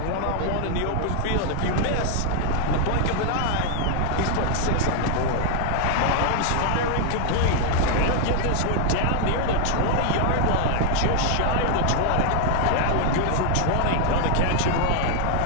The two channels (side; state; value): both; different; correlation 0.00